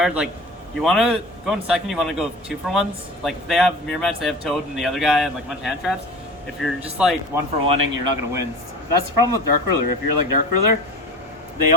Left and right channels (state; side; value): normal; both; correlation 0.36